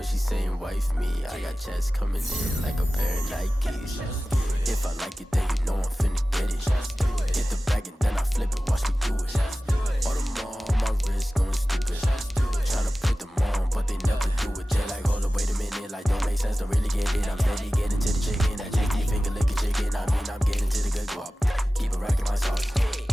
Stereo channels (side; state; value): both; normal; correlation 0.96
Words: she saying wife me. I got checks coming in like a pair of Nikes. If I like it, then you know I'm finna get it. Hit the bag and then I flip it, watch me do it. All the more on my wrist going stupid. Tryna put them on, but they never do it. They like, hold up, wait a minute, like don't make sense, don't really get it. I'm steady getting to the chicken, that JT finger licking chicken. I mean, I'm getting to the good guap. Keep a rack in my socks.